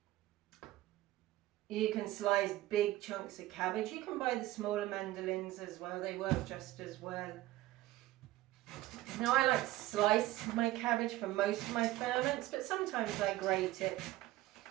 slice big chunks of cabbage. You can buy the smaller mandolins as well, they work just as well. Now I like to slice my cabbage for most of my ferments, but sometimes I grate it.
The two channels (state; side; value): quieter; left; 16.7 dB